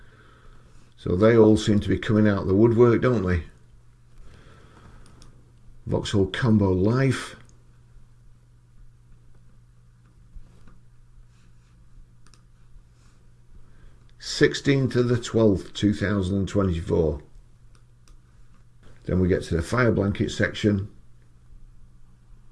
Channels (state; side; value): identical; both; correlation 1.00